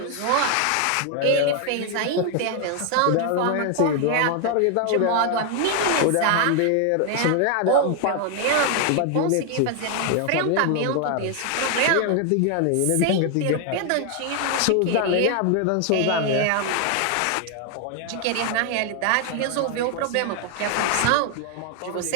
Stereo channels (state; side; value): different; both; correlation 0.01